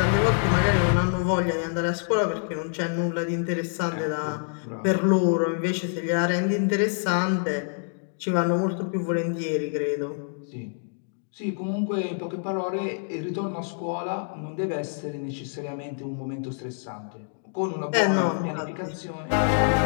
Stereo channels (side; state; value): right; silent; digital silence